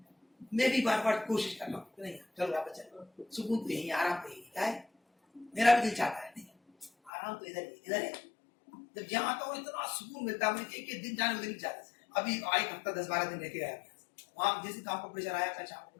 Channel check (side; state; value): right; drops out; at 7.1 s